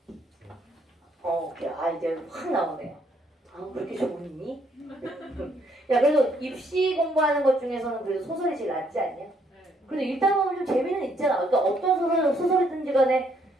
그래. 이제 확 나오네요. 그렇게 좋니? 야, 그래도 입시 공부하는 것 중에서는 그래도 소설이 제일 낫지 않냐? 그래도 읽다 보면 좀 재미는 있잖아. 그러니까 어떤 소설이든지 간에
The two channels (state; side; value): normal; both; correlation 0.70